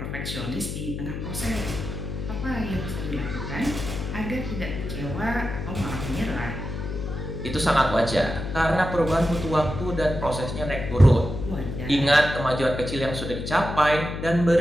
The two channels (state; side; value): noise; left; hum, 6 dB below the sound